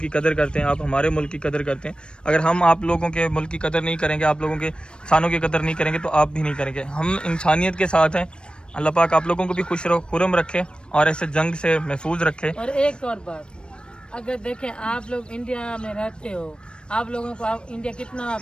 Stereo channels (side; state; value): right; late; 0.054 ms